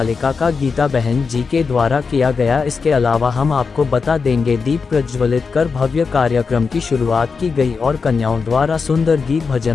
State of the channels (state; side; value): quieter; right; 5.1 dB